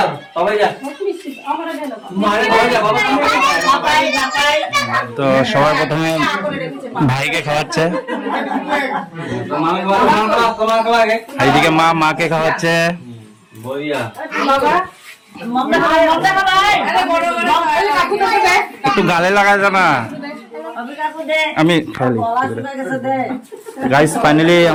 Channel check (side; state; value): both; identical; correlation 1.00